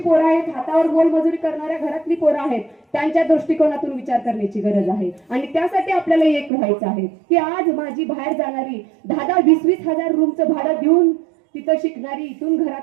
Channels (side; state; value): left; drops out; at 6.5 s